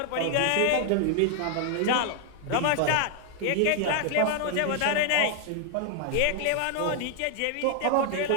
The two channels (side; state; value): both; different; correlation 0.00